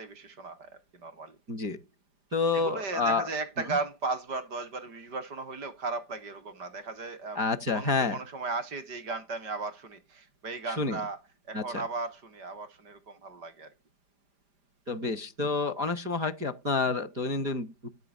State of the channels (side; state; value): left; late; 5.0 ms